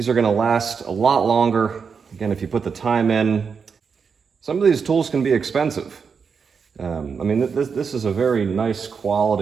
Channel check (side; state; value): left; quieter; 5.9 dB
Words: are going to last a lot longer. Again, if you put the time in. Some of these tools can be expensive. I mean, this is a very nice